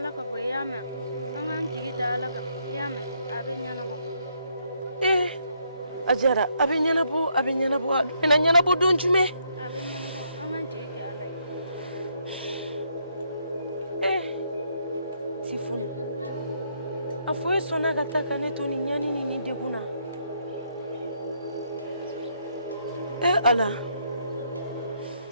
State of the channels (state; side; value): inverted; both; correlation -0.73